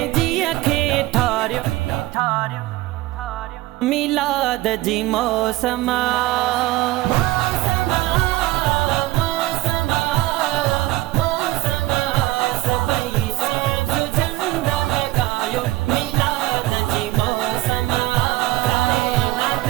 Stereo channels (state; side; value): quieter; left; 17.7 dB